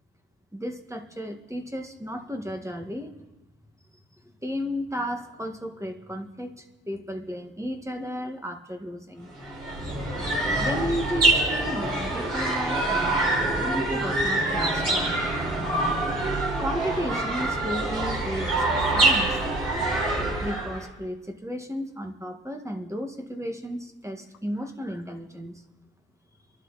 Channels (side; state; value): both; normal; correlation 0.53